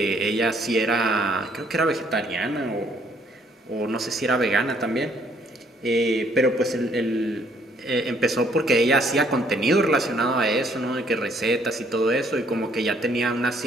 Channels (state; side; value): normal; both; correlation 0.65